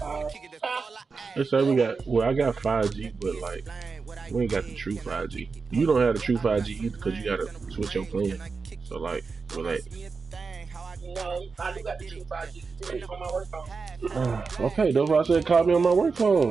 They say I got 5G, but like, we ain't got the true 5G. You don't have the true 5G either because you gotta switch your plan. So like, relax. No, I do got the true 5G still on my work phone. Okay, that's why I said call me on my work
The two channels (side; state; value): left; quieter; 4.7 dB